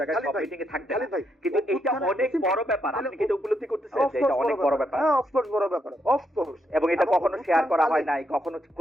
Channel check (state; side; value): normal; both; correlation 0.79